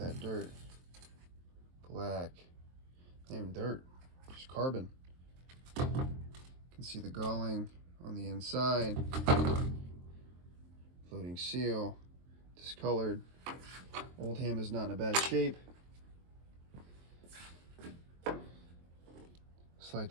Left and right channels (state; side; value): late; left; 23 ms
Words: dirt. Black. Not even dirt, just carbon. You can see the galling on the inside. Floating seal. Discolored. Oldham is not in a bad shape. Slight